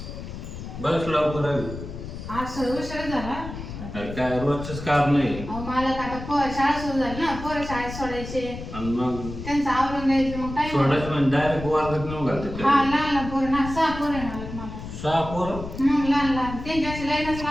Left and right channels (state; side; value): noise; left; rumble, 10 dB below the sound